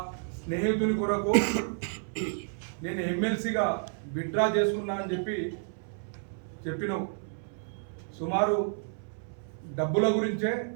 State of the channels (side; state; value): left; silent; 57 dB below the other